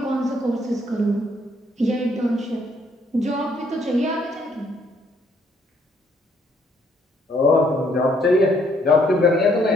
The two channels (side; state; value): both; normal; correlation 0.68